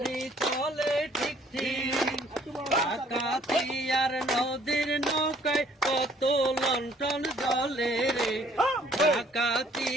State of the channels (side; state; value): both; normal; correlation 0.60